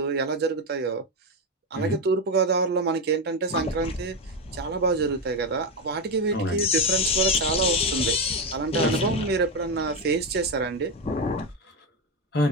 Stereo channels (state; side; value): normal; both; correlation 0.11